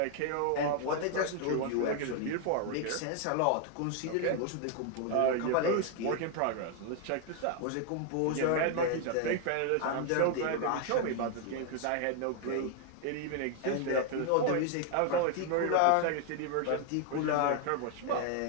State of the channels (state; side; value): different; both; correlation 0.00